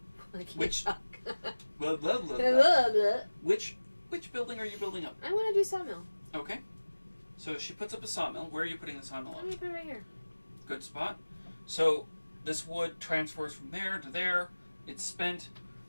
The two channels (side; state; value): both; inverted; correlation -1.00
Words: I can't Which- talk. Blah, blah, blah, Blah, blah. blah. Which building are you building up? I want to do sawmill. Okay. So she puts up a sawmill. Where are you putting the sawmill Let up? me put it right here. Good spot. So this wood transfers from there to there. It's spent.